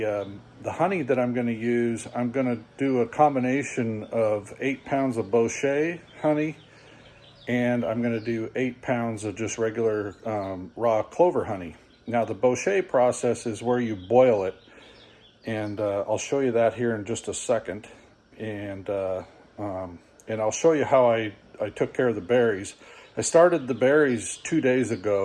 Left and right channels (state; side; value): identical; both; correlation 1.00